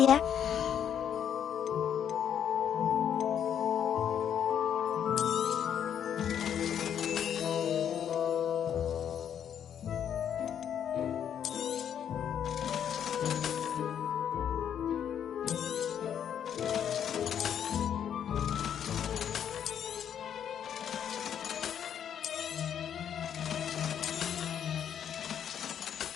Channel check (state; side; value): quieter; right; 9.0 dB